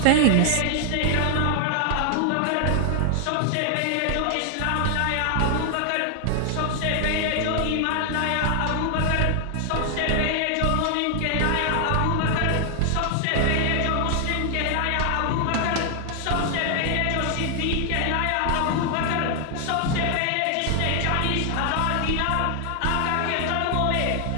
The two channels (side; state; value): both; different; correlation 0.00